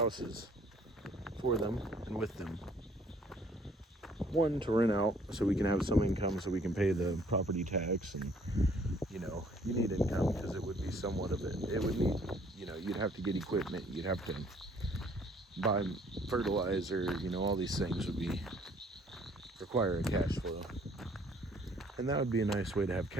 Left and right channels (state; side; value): normal; both; correlation 0.60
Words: for them and with them. One, to rent out so we can have some income so we can pay the property tax, and you know, you need income because it would be somewhat of it. It would need, you know, you'd have to get equipment, you'd have to buy fertilizer, you know, all these things would require a cash flow. And that would be a nice way to have